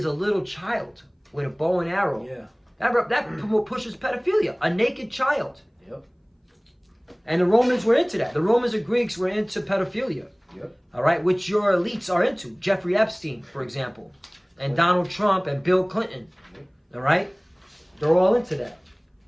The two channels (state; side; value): identical; both; correlation 1.00